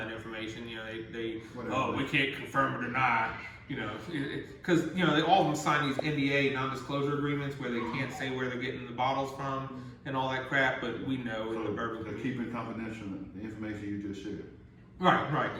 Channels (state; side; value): identical; both; correlation 1.00